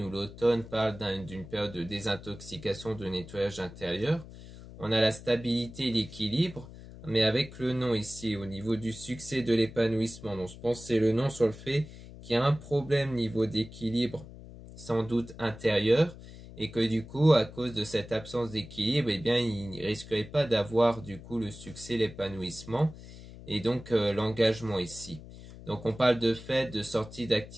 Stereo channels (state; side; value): noise; left; hum, 16 dB below the sound